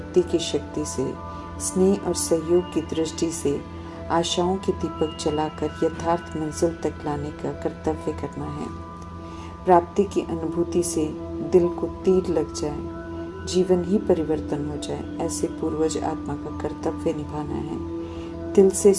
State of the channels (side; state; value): both; identical; correlation 1.00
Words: की शक्ति से, स्नेह और सहयोग की दृष्टि से आशाओं के दीपक जलाकर यथार्थ मंजिल तक लाने का कर्तव्य करना है। प्राप्ति की अनुभूति से दिल को तीर लग जाए, जीवन ही परिवर्तन हो जाए, ऐसे पूर्वज आत्मा का कर्तव्य निभाना है। दिल से